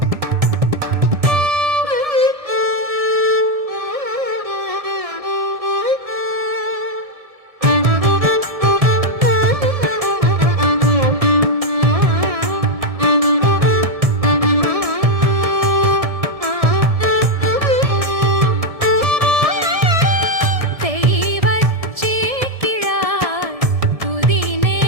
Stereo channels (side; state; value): left; late; 1.7 ms